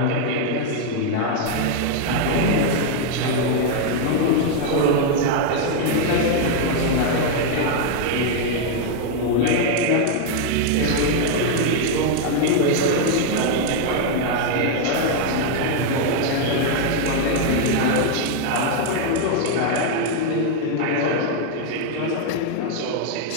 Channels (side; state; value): both; different; correlation 0.00